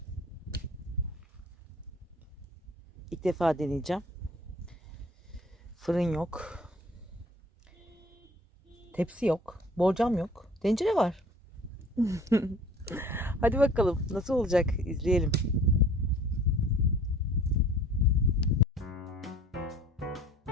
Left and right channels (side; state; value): both; normal; correlation 0.50